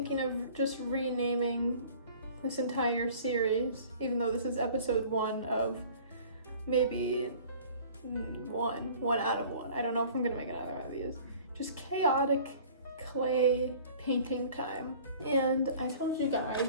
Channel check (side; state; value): both; inverted; correlation -0.48